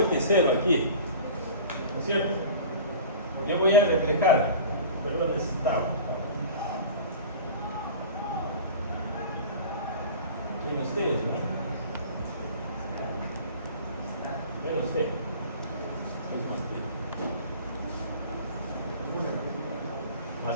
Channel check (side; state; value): both; inverted; correlation -0.39